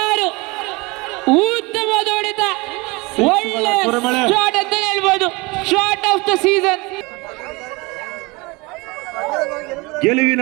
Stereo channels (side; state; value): left; quieter; 25.2 dB